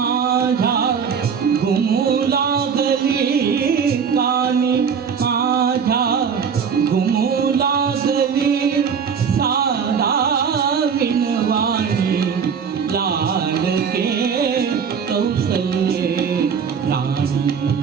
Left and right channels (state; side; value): quieter; left; 6.7 dB